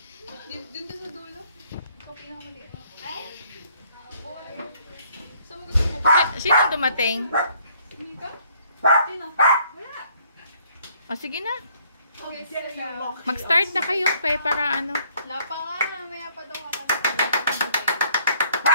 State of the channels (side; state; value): both; inverted; correlation -0.64